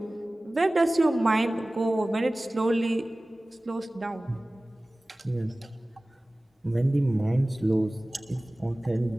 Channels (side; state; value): both; normal; correlation 0.98